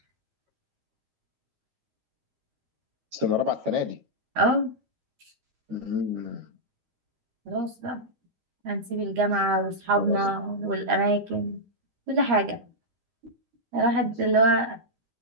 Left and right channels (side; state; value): left; late; 13 ms